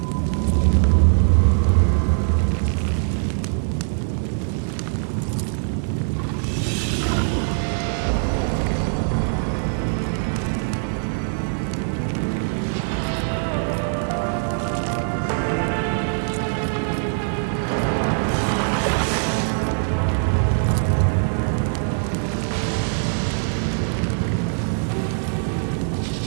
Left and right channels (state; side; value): silent; left; digital silence